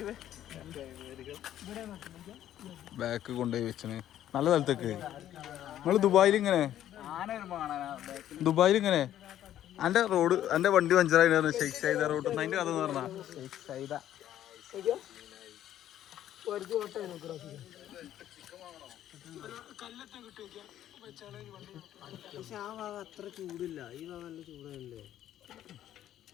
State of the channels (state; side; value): quieter; right; 11.8 dB